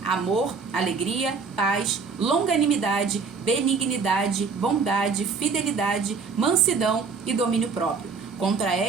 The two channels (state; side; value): quieter; left; 5.1 dB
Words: amor, alegria, paz, longanimidade, benignidade, bondade, fidelidade, mansidão e domínio próprio. Contra